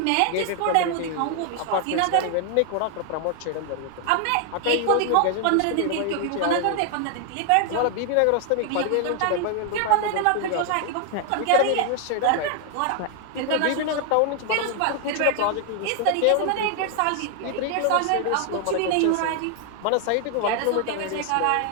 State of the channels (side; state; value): both; different; correlation 0.00